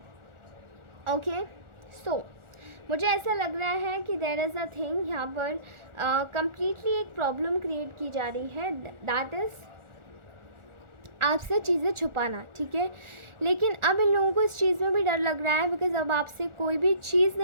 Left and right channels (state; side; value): late; left; 1.4 ms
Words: ओके, सो मुझे ऐसा लग रहा है कि देयर इज़ अ थिंग यहाँ पर कम्प्लीटली एक प्रॉब्लम क्रिएट की जा रही है, दैट इज़ आपसे चीज़ें छुपाना। ठीक है, लेकिन अब इन लोगों को इस चीज़ में भी डर लग रहा है, बिकॉज़ अब आपसे कोई भी चीज़